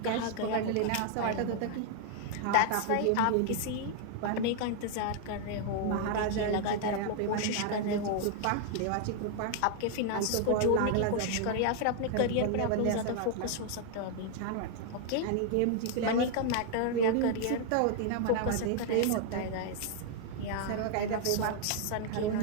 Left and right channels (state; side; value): different; both; correlation 0.00